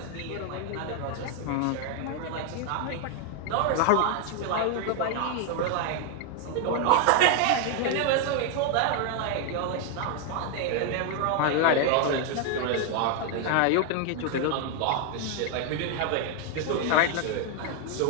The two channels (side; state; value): both; different; correlation 0.00